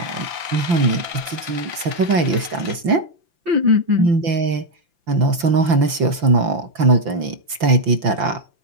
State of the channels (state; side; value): late; left; 5.9 ms